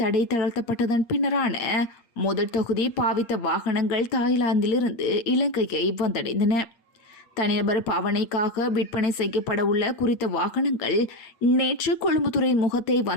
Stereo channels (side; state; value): right; late; 8.7 ms